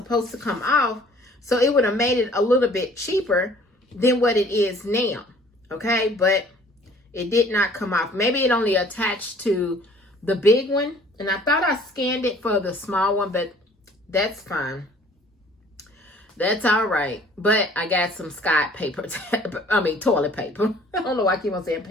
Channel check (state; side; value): normal; both; correlation 0.54